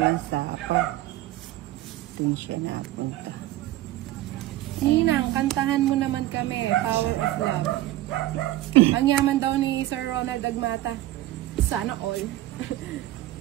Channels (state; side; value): quieter; left; 15.4 dB